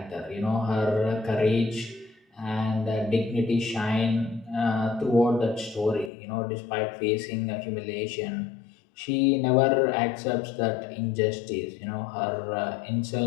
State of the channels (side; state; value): right; drops out; at 6.1 s